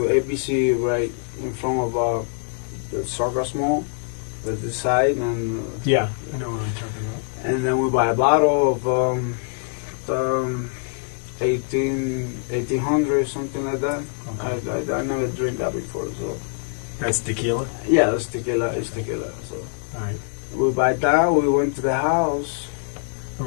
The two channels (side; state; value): right; silent; 63 dB below the other